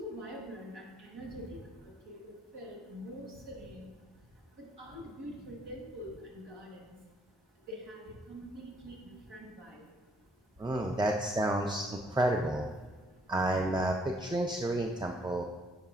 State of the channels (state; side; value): normal; both; correlation 0.68